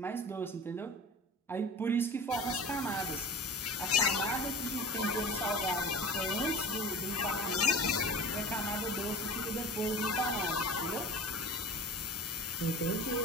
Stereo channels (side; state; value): both; normal; correlation 0.38